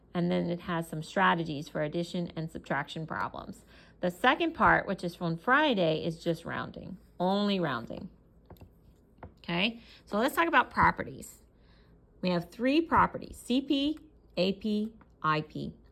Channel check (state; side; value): identical; both; correlation 1.00